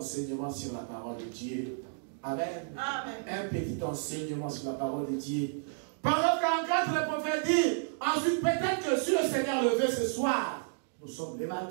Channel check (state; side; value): silent; left; digital silence